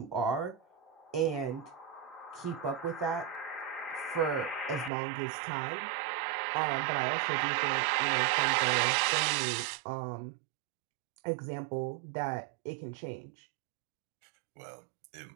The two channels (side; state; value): left; drops out; at 4.9 s